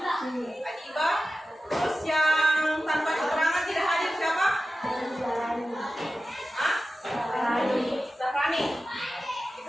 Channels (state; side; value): normal; both; correlation 0.94